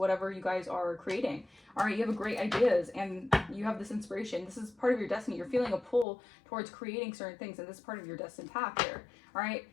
you guys are creating. All right, you have great ideas and you have this inspiration. This is part of your destiny. You're feeling a pull towards creating certain things, and this is part of your destined path here. All right.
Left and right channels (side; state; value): right; drops out; at 6.1 s